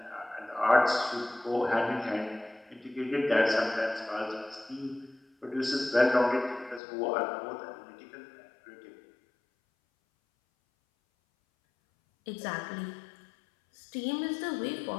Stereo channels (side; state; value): right; drops out; at 6.8 s